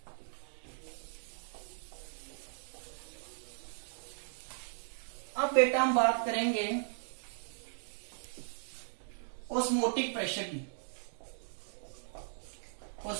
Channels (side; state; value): left; silent; digital silence